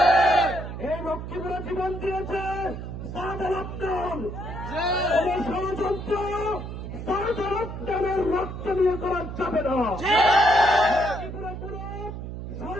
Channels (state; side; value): noise; right; hum, 8 dB below the sound